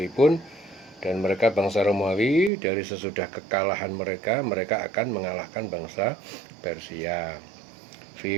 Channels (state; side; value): drops out; left; at 2.5 s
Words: dan mereka bangsa Romawi dari sesudah kekalahan mereka akan mengalahkan bangsa Persia. Fi